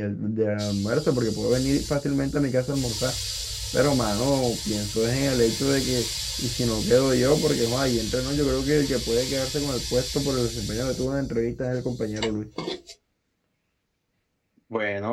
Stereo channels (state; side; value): identical; both; correlation 1.00